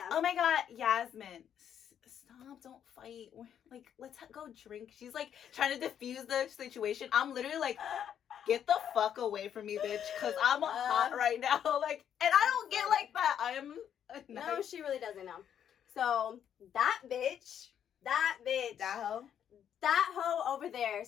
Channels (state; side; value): quieter; right; 9.2 dB